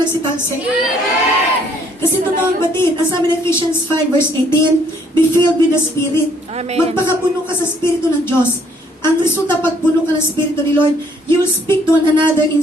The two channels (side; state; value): both; normal; correlation 0.65